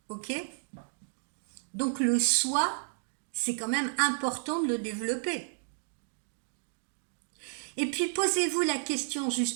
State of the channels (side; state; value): left; silent; digital silence